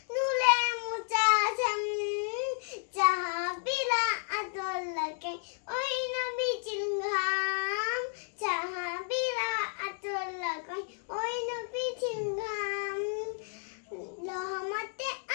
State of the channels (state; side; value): silent; right; 56 dB below the other